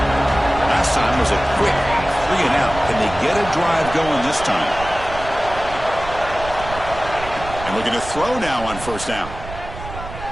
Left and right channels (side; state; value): right; noise; rumble, 12 dB below the sound